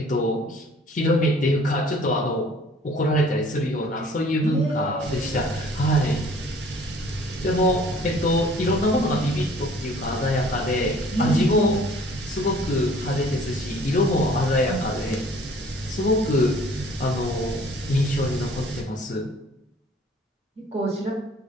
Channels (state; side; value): normal; both; correlation 0.53